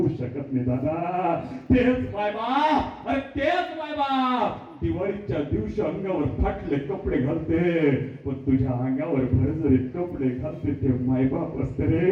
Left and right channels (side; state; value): both; identical; correlation 1.00